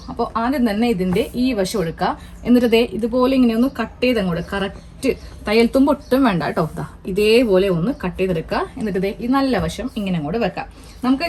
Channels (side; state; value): both; identical; correlation 1.00